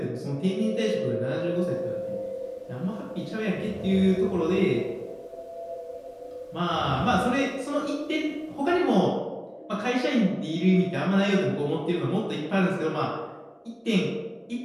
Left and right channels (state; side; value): identical; both; correlation 1.00